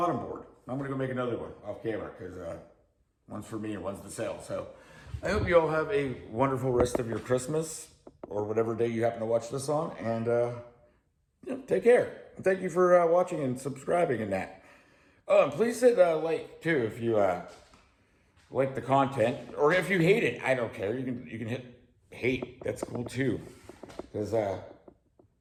board. I'm going to go make another one off camera because one's for me and one's to sell. So I hope you all have a wonderful rest of your Christmas or whatever day you happen to watch this on. And, you know, take care. And thank you for watching and subscribing and that. Oh, and please hit like, too, if you... like the content, or if you hate it, I don't care. You can hit hate. That's cool too, because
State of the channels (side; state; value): both; identical; correlation 1.00